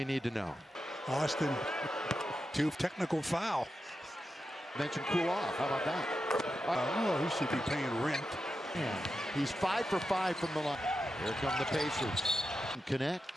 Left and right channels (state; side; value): normal; both; correlation 0.89